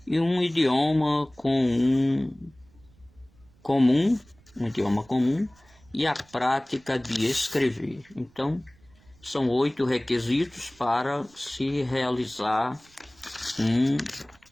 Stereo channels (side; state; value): right; noise; rumble, 29 dB below the sound